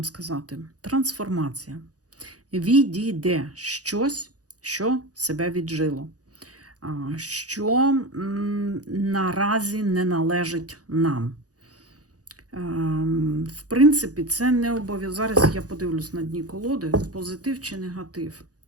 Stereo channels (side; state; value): left; late; 0.67 ms